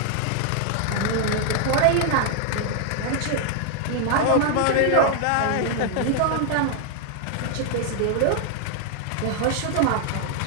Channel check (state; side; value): different; both; correlation 0.00